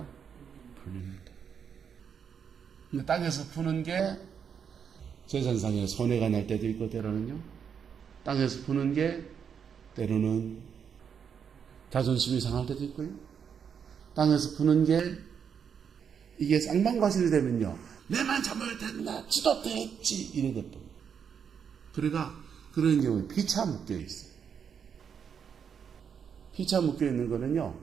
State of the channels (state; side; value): quieter; left; 7.3 dB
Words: 풀립니다. 근데 땅에서 푸는 게 재산상에 손해가 날 때도 있고, 때로는요, 땅에서 푸는 게 때로는 자존심이 상할 때도 있고요, 땅에서 푸는 게 이게 쌍방과실이 되면요, 내만 잘못했나, 지도 됐지, 이래 돼버립니다. 그러니까 그런 경우에 피차 묶여 있어요. 피차 묶여 있는 거는요,